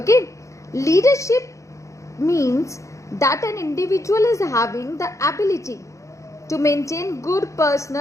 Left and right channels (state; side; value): late; right; 0.15 ms